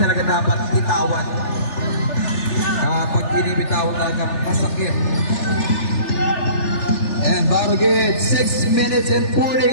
dapat bitawan. Pag binibitawan talaga, masakit. And Barugit, 6 minutes and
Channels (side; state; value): right; late; 3.4 ms